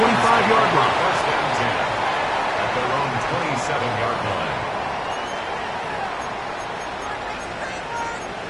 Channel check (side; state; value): both; identical; correlation 1.00